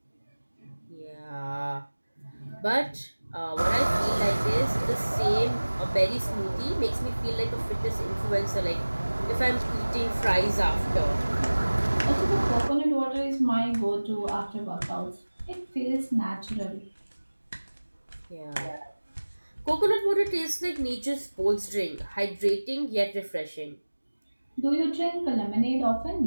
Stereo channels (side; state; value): both; inverted; correlation -1.00